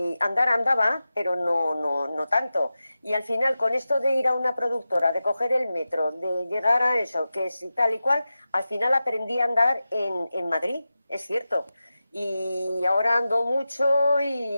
andar andaba, pero no tanto. Y al final, con esto de ir a una productora, de coger el metro, de llegar a eso, que es tal y cual, al final aprendí a andar en Madrid, es cierto. Y ahora ando mucho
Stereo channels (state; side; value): inverted; both; correlation -0.93